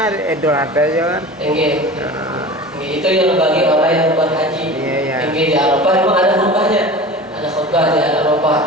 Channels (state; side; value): normal; both; correlation 0.36